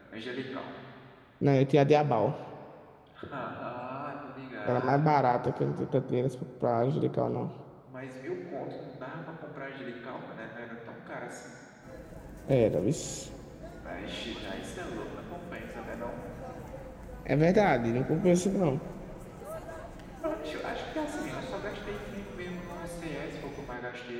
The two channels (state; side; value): identical; both; correlation 1.00